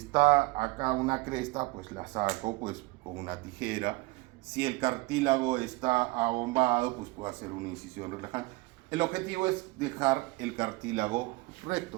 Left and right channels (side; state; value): left; quieter; 22.2 dB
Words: acá una cresta, pues la saco pues con una tijera. Si el cartílago está abombado, pues puedo hacer una incisión relajante. El objetivo es dejar el cartílago